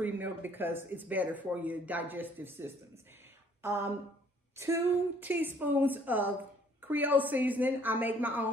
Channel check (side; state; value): both; normal; correlation 0.60